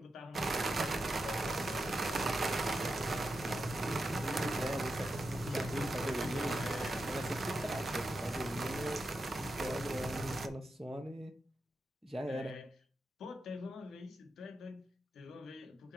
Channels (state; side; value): normal; both; correlation 0.88